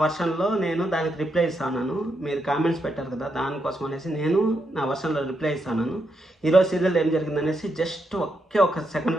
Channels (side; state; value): both; normal; correlation 0.81